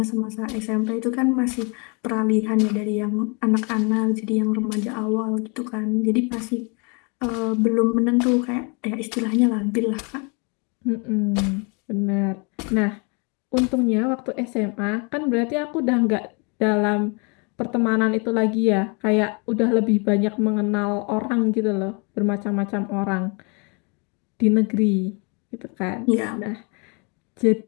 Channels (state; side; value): quieter; right; 33.0 dB